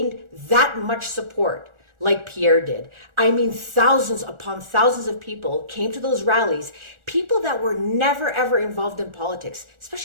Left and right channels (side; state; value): left; late; 1.4 ms